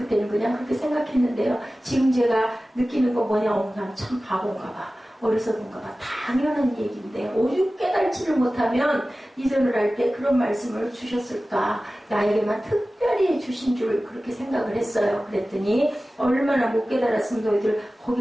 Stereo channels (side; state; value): both; normal; correlation 0.96